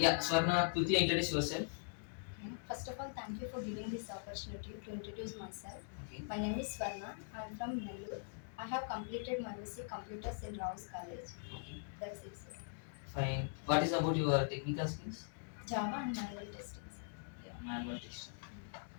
Swarna, quickly introduce yourself. Okay. First of all, thank you for giving this opportunity to introduce myself. Okay. My name is Swarna. I am from Nellore. I have completed my MSc Computers in Rao's College. Okay. That's it sir. Fine. What is about your technical skills? Java and manual testing sir. Yeah, manual testing.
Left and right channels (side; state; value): right; silent; digital silence